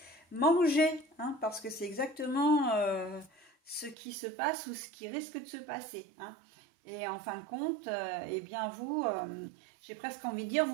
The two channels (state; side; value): drops out; left; at 4.0 s